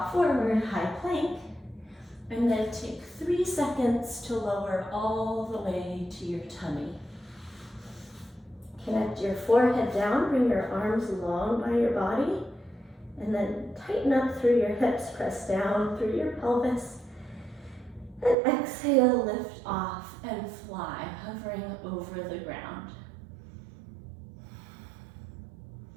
forward, high plank, and then take 3 seconds to lower all the way to your tummy. Connect your forehead down, bring your arms long by your body, and then tighten up through your hips, press down through your pelvis, and exhale, lift off and fly, hovering over the ground.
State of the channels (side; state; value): left; drops out; at 18.4 s